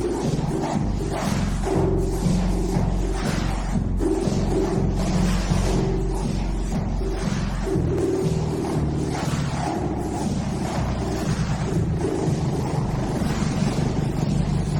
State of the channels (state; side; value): identical; both; correlation 1.00